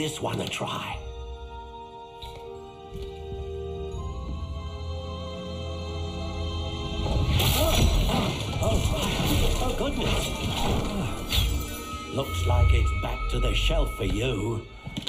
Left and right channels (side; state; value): both; identical; correlation 1.00